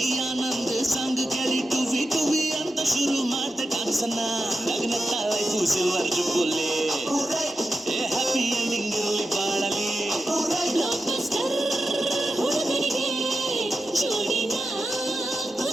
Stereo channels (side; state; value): both; normal; correlation 0.90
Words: ಆನಂದ್ ಸಂಗ್ ಕೇಳಿ ಟುವಿ ಟುವಿ ಅಂತ ಶುರು ಮಾಡ್ದೆ ಡಾನ್ಸನ್ನ ನಗ್ನತ್ತ life silver jubilee happy ending ಇರಲಿ ಬಾಳಲಿ ಬ್ಲಾಕ್ ಬಸ್ಟರ್ ಹುಡುಗನಿಗೆ ಜೋಡಿನ